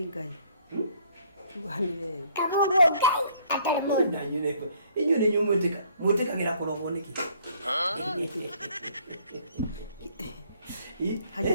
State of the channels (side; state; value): both; inverted; correlation -0.62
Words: Ngai. Tugaga nĩ wewe. Kamuguo Ngai atarĩ mũndũ. Na inyuĩ nĩ inyuĩ mwĩtĩkagĩra kũrogwo nĩkĩ?